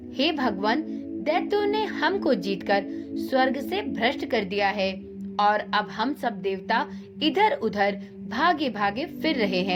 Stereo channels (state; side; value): identical; both; correlation 1.00